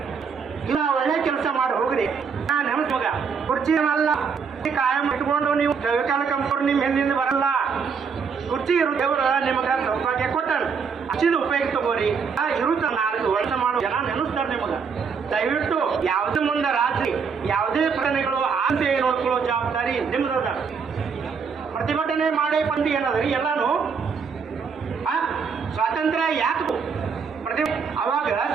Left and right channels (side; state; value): left; quieter; 5.9 dB